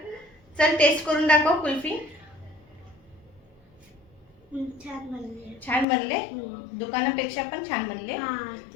चल टेस्ट करून दाखव कुल्फी. छान बनले. छान बनले. दुकानापेक्षा पण छान बनले.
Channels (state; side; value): drops out; right; at 5.9 s